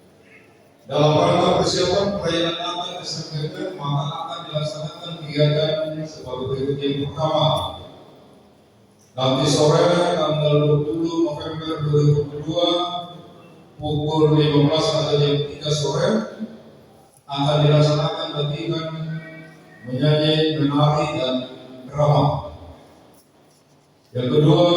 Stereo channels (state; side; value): identical; both; correlation 1.00